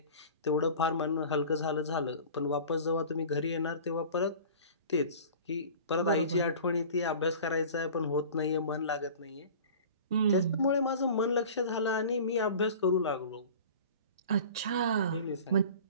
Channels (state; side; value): inverted; both; correlation -0.40